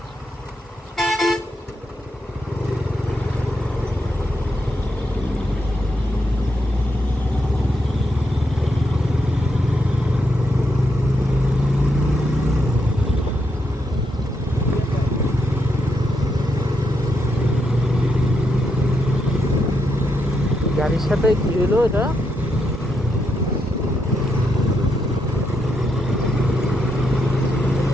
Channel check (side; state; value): both; normal; correlation 0.81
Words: গাড়ির সাথে কি হলো এটা?